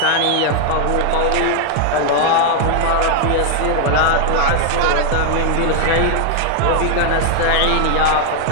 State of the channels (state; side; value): different; both; correlation 0.00